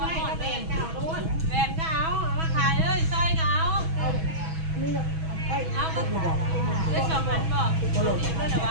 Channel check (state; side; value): late; left; 6.2 ms